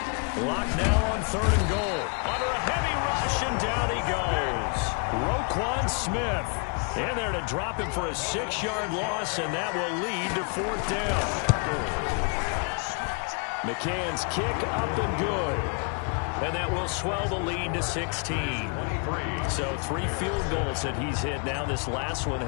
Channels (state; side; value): quieter; right; 37.4 dB